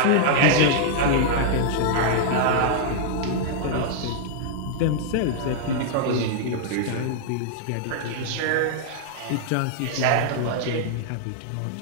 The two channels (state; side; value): different; both; correlation -0.01